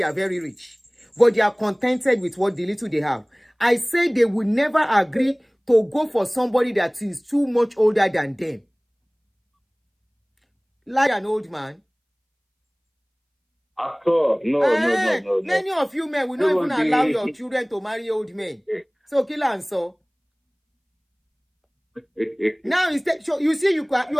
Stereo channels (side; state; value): both; identical; correlation 1.00